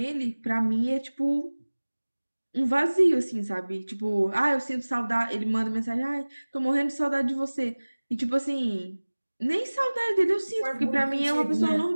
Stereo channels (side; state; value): both; inverted; correlation -1.00